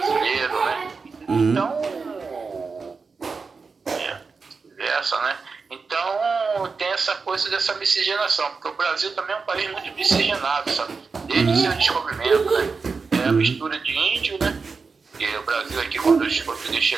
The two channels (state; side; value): quieter; left; 4.7 dB